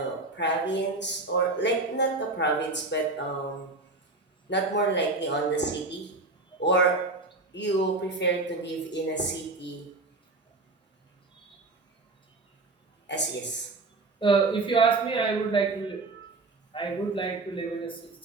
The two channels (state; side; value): quieter; left; 3.3 dB